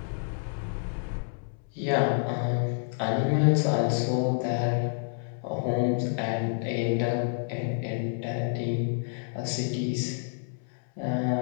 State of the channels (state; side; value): silent; right; 59 dB below the other